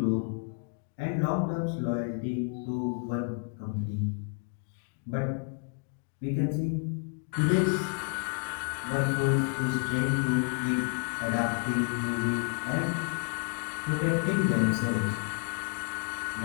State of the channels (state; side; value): quieter; right; 39.3 dB